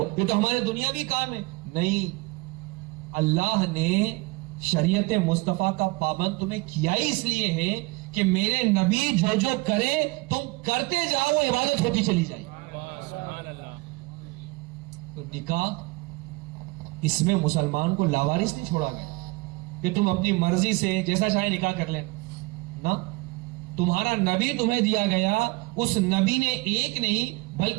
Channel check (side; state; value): left; quieter; 24.4 dB